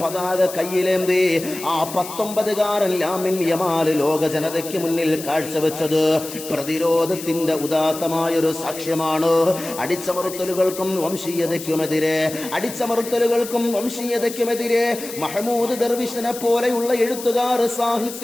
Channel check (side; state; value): left; noise; hiss, 11 dB below the sound